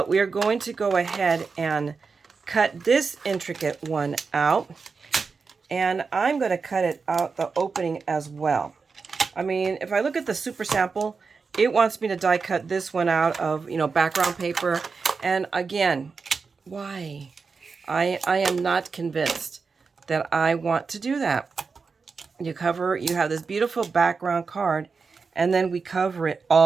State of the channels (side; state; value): left; quieter; 4.9 dB